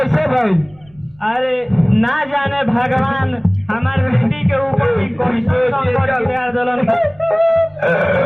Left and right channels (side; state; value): right; noise; rumble, 30 dB below the sound